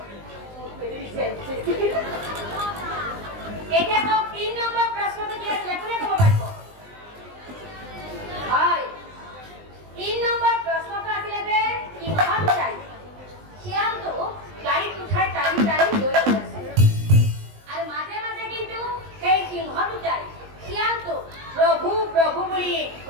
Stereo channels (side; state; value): left; late; 20 ms